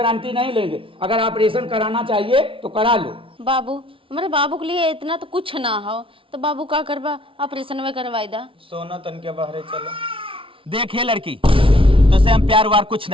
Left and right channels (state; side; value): late; left; 0.25 ms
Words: नहीं लेंगे अगर ऑपरेशन कराना चाहिए तो करा लो। बाबू हमारे बाबू के लिए इतना तो कुछ ना हो तो बाबू का करवा ऑपरेशन में करवाई दा। सोना तन के बाहर चलो। देखे लड़की तो से हम प्यार वार कुछ